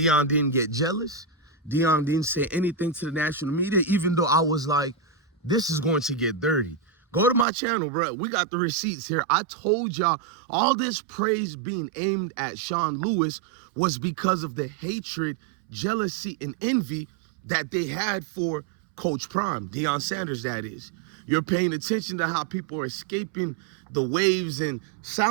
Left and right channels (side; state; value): left; drops out; at 7.5 s